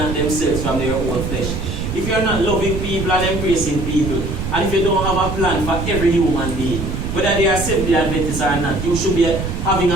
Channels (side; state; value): right; noise; rumble, 4 dB below the sound